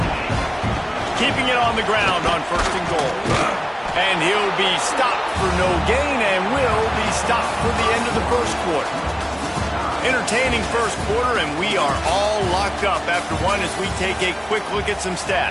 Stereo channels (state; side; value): identical; both; correlation 1.00